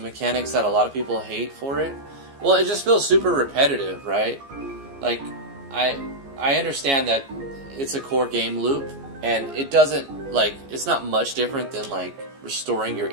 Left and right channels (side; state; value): left; late; 15 ms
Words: that a lot of people hate for it. Well, it just feels super repetitive, right? Like, I understand that it's a core game loop, and it doesn't, like, it's not much different than, like, restoring your